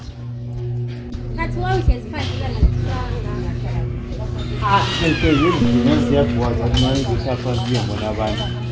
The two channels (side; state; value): both; identical; correlation 1.00